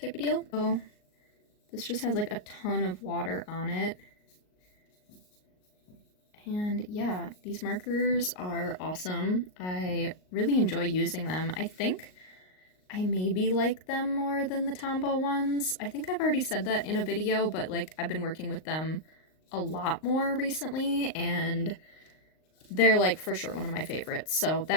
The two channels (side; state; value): right; late; 38 ms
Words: of deal. So this just has like a ton of water on it. And yeah, these markers are awesome. I really enjoy using them. I think I maybe like them more than the Tombow ones. I think I've already said that in a video, but like I've been working with them a lot more recently, and they're like for sure one of my favorites. So